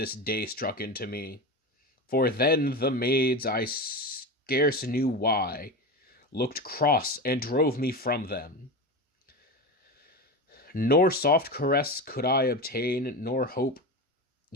day struck into me. For then the maids, I scarce knew why, looked cross and drove me from them. Nor soft caress could I obtain, nor hope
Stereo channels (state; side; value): normal; both; correlation 0.23